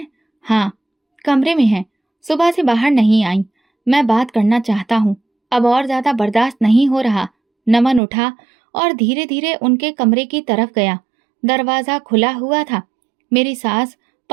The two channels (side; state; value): left; drops out; at 8.0 s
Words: हाँ, कमरे में हैं। सुबह से बाहर नहीं आई। मैं बात करना चाहता हूँ, अब और ज्यादा बर्दाश्त नहीं हो रहा। नमन उठा और धीरे धीरे उनके कमरे की तरफ गया। दरवाजा खुला हुआ था। मेरी सास